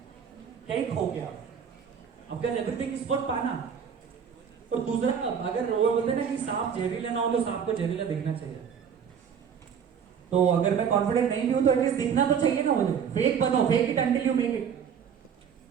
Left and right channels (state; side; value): quieter; left; 7.4 dB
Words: क्या ही खो गया आपका, एवरीथिंग इज फॉर पाना। और दूसरा अगर वो बोलते ना कि सांप जहरीला ना हो तो सांप को जहरीला दिखना चाहिए, तो अगर मैं कॉन्फिडेंट नहीं भी हूं तो एटलीस्ट दिखना तो चाहिए ना मुझे। फेक बनो, fake it until you make it.